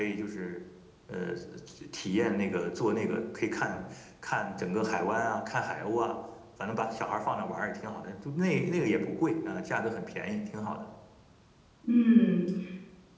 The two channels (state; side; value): identical; both; correlation 1.00